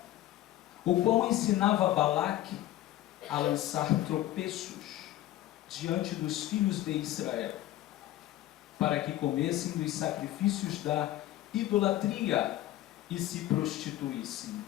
o qual ensinava Balaque a lançar tropeços diante dos filhos de Israel, para que comessem dos sacrifícios da idolatria e se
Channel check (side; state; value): right; quieter; 14.5 dB